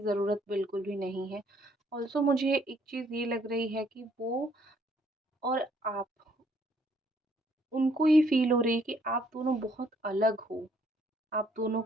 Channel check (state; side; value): normal; both; correlation 0.66